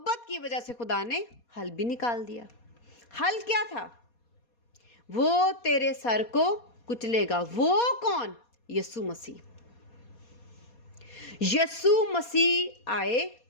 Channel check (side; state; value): right; late; 4.2 ms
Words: کی وجہ سے خدا نے حل بھی نکال دیا۔ حل کیا تھا؟ وہ تیرے سر کو کچلے گا۔ وہ کون؟ یسوع مسیح۔ یسوع مسیح آئے،